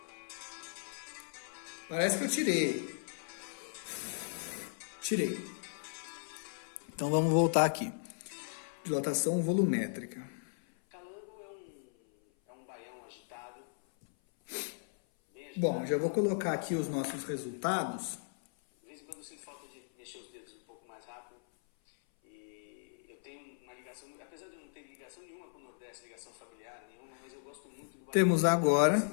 Parece que eu tirei. Então vamos voltar aqui. Dilatação volumétrica. Calango é um baião agitado. Bom, já vou colocar aqui os nossos resultados. De vez em quando eu sinto falta de mexer os dedos um pouco mais rápido. E eu tenho uma ligação, apesar de eu não ter ligação nenhuma com o Nordeste, ligação familiar nenhuma, mas eu gosto muito do baião. Temos agora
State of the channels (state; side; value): silent; right; 53 dB below the other